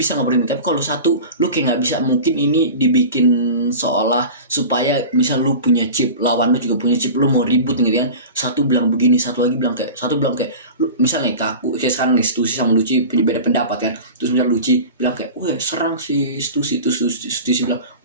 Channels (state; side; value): inverted; both; correlation -0.34